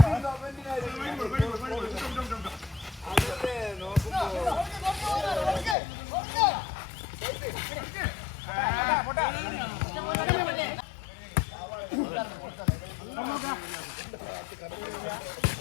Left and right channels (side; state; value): right; drops out; at 5.8 s